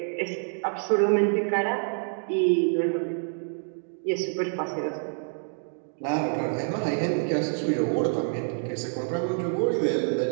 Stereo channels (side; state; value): left; silent; 60 dB below the other